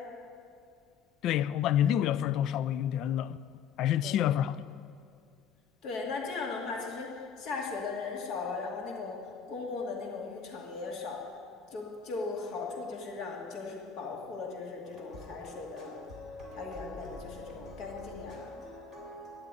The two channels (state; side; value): quieter; right; 7.7 dB